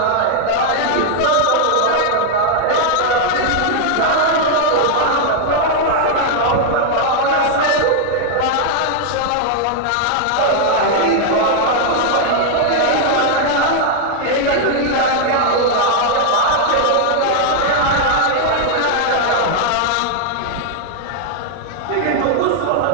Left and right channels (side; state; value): both; different; correlation 0.00